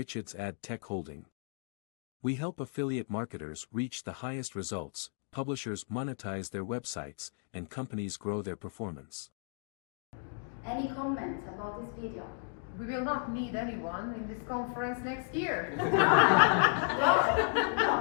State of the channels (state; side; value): silent; right; 55 dB below the other